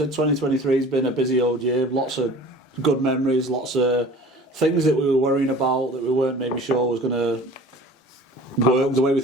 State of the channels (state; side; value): normal; both; correlation 0.44